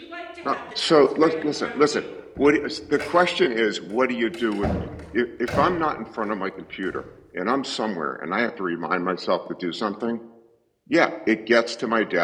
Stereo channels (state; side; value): identical; both; correlation 1.00